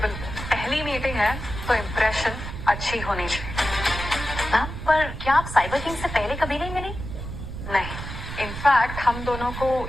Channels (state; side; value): noise; right; rumble, 8 dB below the sound